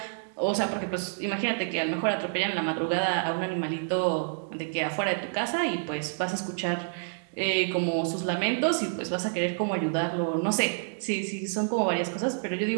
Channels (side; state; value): left; silent; digital silence